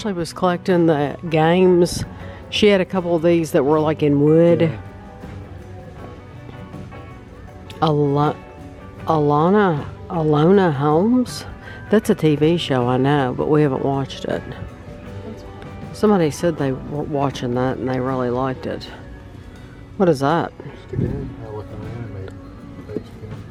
was collecting the games? She had a couple of these that were like in wood. Yeah. Alona Holmes? That's a TV show, I know, but we haven't watched it. Somebody said they were watching that and they really liked it. What is that? Just again, like an anime based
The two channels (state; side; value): identical; both; correlation 1.00